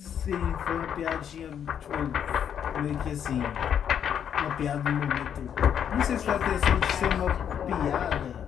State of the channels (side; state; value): right; quieter; 8.7 dB